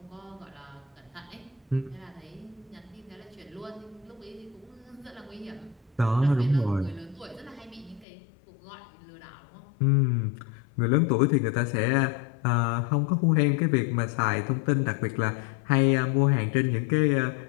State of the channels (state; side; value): drops out; right; at 8.1 s